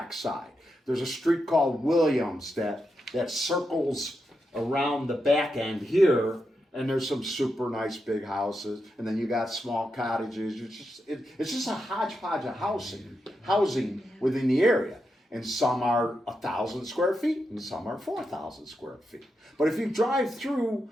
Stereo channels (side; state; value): both; normal; correlation 0.86